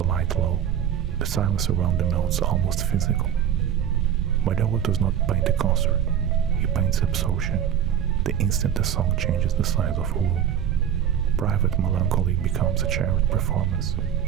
light low, the silence around the notes almost physical. Malhoa does not paint a concert, he paints absorption, the instant a song changes the size of a room. Private melancholy becomes a shared performance,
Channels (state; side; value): quieter; left; 9.4 dB